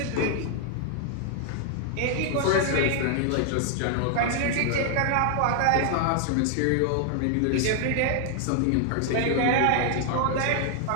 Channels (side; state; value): both; different; correlation 0.00